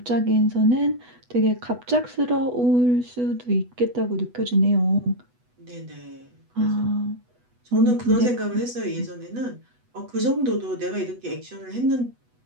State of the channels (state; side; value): late; left; 8.1 ms